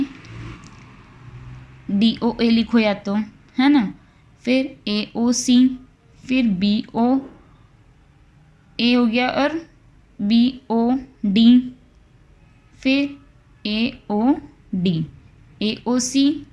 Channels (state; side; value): identical; both; correlation 1.00